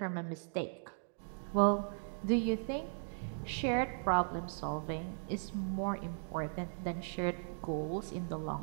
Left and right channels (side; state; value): left; silent; digital silence